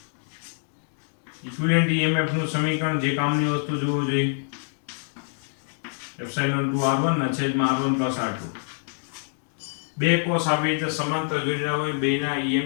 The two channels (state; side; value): silent; right; digital silence